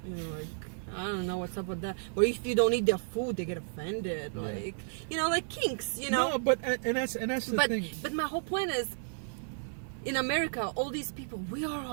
Like, I don't know what's up with that. Or if you don't eat their food, they get offended. Like, like kinks, No, but and that's the thing. But my whole point is, in America, all these people, we are all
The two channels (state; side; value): silent; left; digital silence